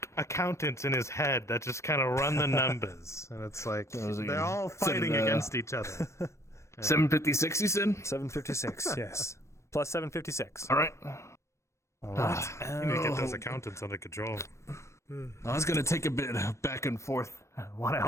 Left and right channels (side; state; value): right; late; 0.14 ms